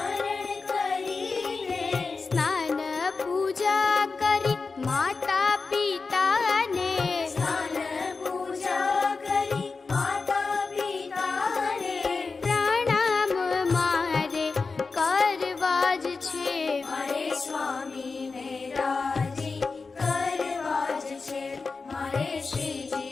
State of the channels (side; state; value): right; quieter; 4.3 dB